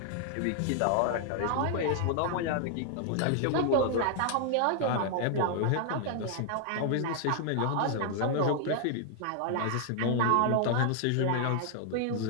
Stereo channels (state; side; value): different; both; correlation 0.00